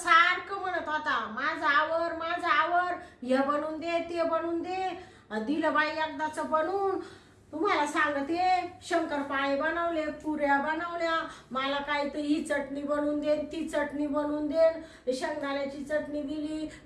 म्हणत होता माझं आवर हे बनवून दे ते बनवून दे. दिलं बाई एकदाच बनवून. तुम्हाला सांगते शंकरपाळे बनवले, पुऱ्या बनवल्या, मला काय तर ही चटणी बनवून दे ती चटणी बनवून दे, शेंगदाण्याची चटणी दिली,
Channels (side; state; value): both; identical; correlation 1.00